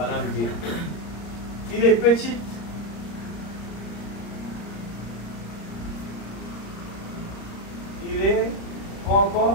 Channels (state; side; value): late; right; 35 ms